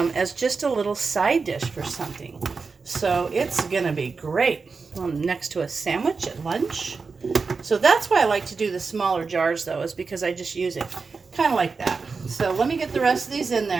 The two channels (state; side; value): quieter; left; 4.6 dB